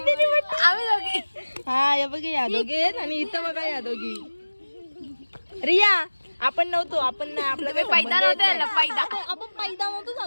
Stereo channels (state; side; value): inverted; both; correlation -1.00